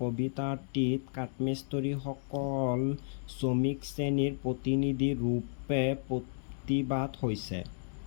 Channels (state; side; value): silent; right; digital silence